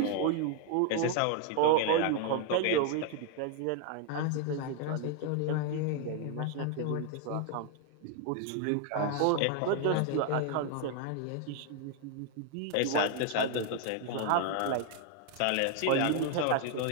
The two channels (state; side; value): different; both; correlation 0.00